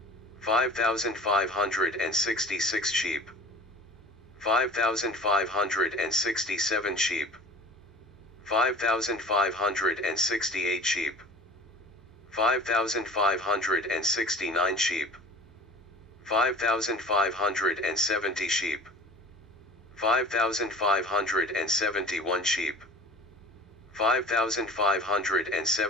5,566 sheep, 5,567 sheep, 5,568 sheep, 5,569 sheep, 5,570 sheep, 5,571 sheep,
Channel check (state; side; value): normal; both; correlation 0.42